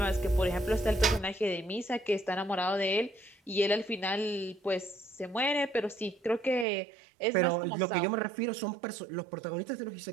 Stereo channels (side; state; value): left; drops out; at 6.7 s